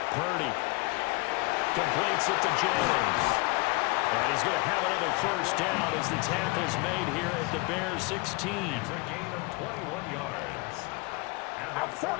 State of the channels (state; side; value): quieter; right; 25.9 dB